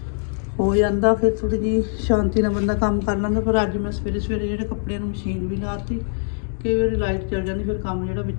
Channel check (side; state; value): right; silent; digital silence